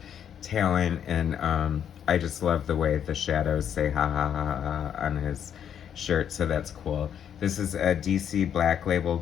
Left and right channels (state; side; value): quieter; right; 8.9 dB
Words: talent, and I just love the way the shadows say ha ha ha ha on his shirt, so that's cool. This is a DC Black Label